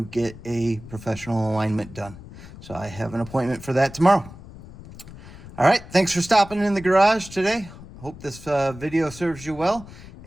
get a professional alignment done. So I have an appointment for that tomorrow. All right, thanks for stopping in the garage today. Hope this video serves you well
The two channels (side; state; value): left; noise; rumble, 17 dB below the sound